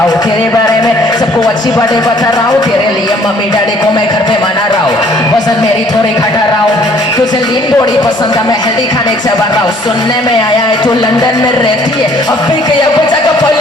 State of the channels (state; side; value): normal; both; correlation 0.59